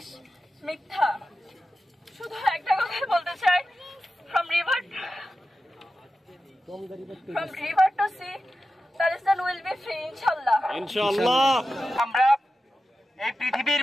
মিথ্যা। শুধু একটা কথাই বলতে চাই, from river to sea, Palestine will be free, inshallah. ইনশাআল্লাহ। আমরা এই পৃথিবীর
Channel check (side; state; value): both; normal; correlation 0.92